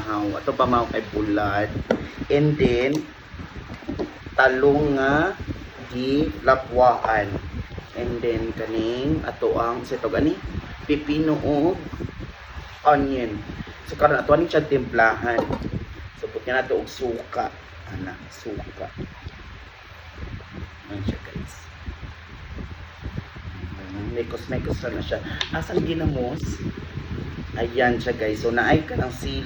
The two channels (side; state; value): both; identical; correlation 1.00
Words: Ato pamahaw kay bulad. And then talong nga di lapwaan. And then kaning ato ang sitog ani pipino o onion. So karon ato ani siya timplahan. So putya nato og suka. Ana, suka. Ano siya guys. Mekos-mekos na siya. Asang ginamos? Ayan siya guys. So naay ka ng